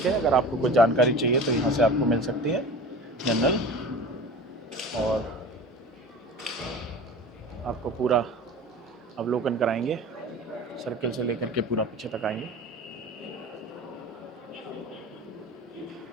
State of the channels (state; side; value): normal; both; correlation 0.36